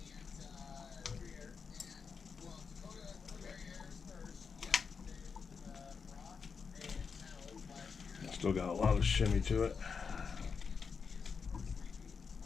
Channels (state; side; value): quieter; right; 5.6 dB